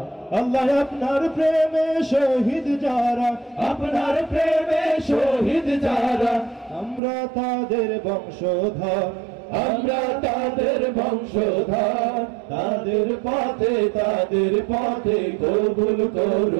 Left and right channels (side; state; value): left; drops out; at 7.0 s